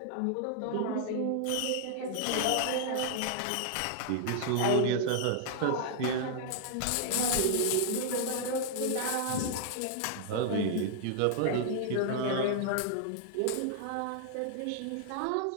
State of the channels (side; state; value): both; different; correlation 0.00